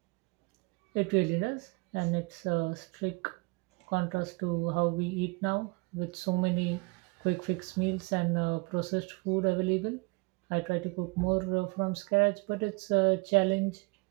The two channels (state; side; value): quieter; left; 28.5 dB